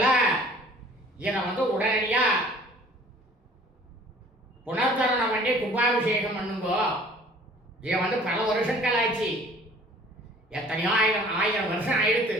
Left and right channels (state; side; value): normal; both; correlation 0.52